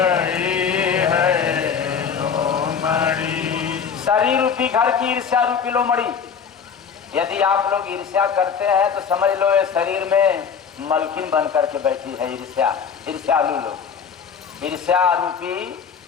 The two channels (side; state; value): right; quieter; 6.8 dB